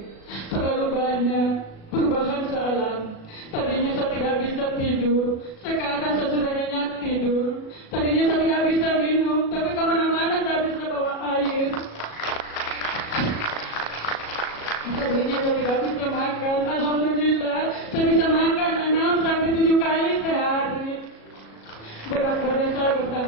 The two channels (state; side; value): late; right; 37 ms